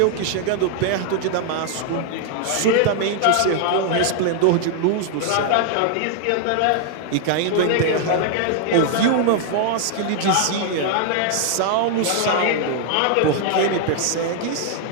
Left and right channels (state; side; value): different; both; correlation 0.00